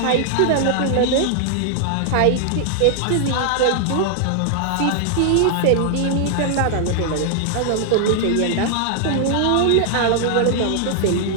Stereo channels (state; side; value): different; both; correlation 0.00